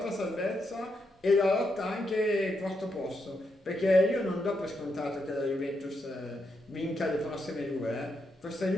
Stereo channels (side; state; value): both; normal; correlation 0.82